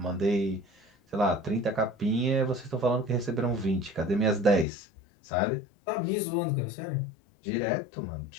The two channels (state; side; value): drops out; right; at 4.7 s